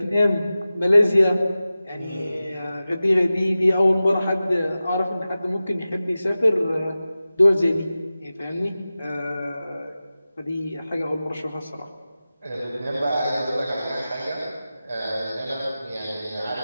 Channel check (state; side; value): inverted; both; correlation -0.95